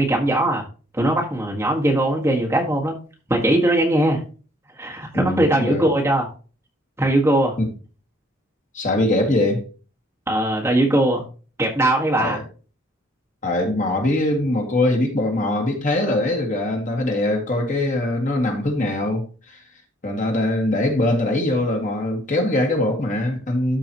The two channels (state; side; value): normal; both; correlation 0.62